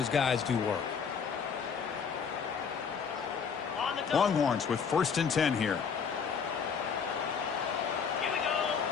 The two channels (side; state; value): right; quieter; 6.4 dB